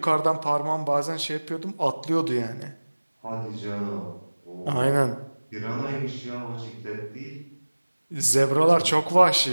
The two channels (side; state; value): both; inverted; correlation -1.00